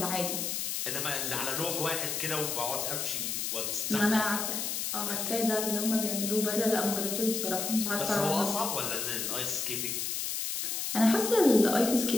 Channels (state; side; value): noise; left; hiss, 2 dB below the sound